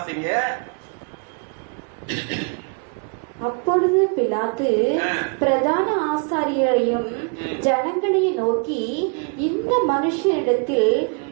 அப்பொழுது பிலாத்து பிரதான ஆசாரியரையும் ஜனங்களையும் நோக்கி, இந்த மனுஷனிடத்தில்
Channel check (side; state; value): left; quieter; 38.6 dB